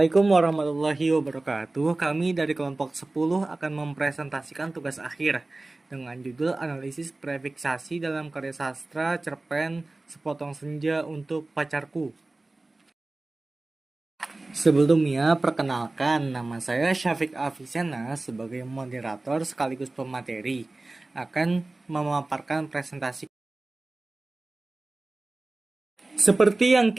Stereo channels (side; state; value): left; quieter; 3.0 dB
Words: warahmatullahi wabarakatuh. Kami dari kelompok 10 akan mempresentasikan tugas akhir dengan judul analisis prefiksasi dalam karya sastra cerpen Sepotong Senja untuk Pacarku. Sebelumnya, perkenalkan, nama saya Syafiq Afisena sebagai moderator sekaligus pemateri akan memaparkan presentasi. Seperti yang